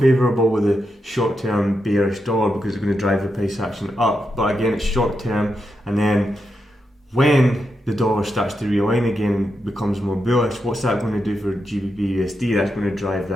with a short-term bearish dollar, because it's going to drive the price action up. But again, it's short-term, and then when the dollar starts to realign again and becomes more bullish, what's that going to do for GBPUSD? That's going to drive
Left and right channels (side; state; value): both; normal; correlation 0.86